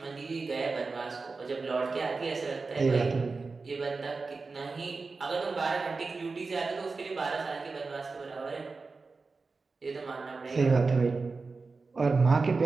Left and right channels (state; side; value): quieter; left; 4.1 dB